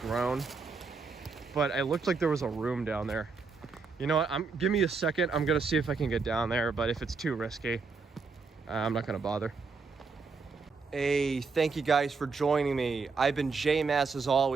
but it looked like there was a room down there. You know what, give me a second. I'm gonna see if I can get down there, but if it's too risky, I'm not gonna bother. Hey, thank you guys for joining me. I've been J-Mass as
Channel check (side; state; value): left; quieter; 4.6 dB